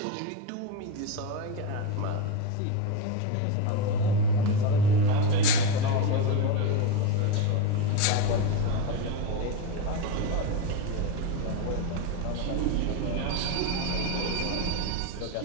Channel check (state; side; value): different; both; correlation 0.05